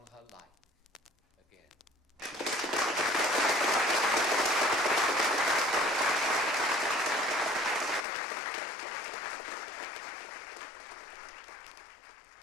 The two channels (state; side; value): drops out; right; at 8.1 s